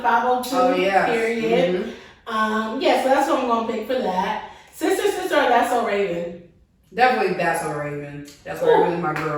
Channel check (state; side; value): identical; both; correlation 1.00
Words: 502. Oh yeah. Period. Yeah, so that's what I'm gonna pick for that. Sister, or That's So Raven. Definitely That's So Raven. That's So Raven is my